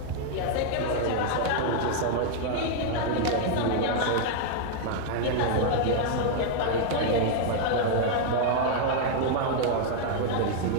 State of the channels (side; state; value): both; different; correlation 0.00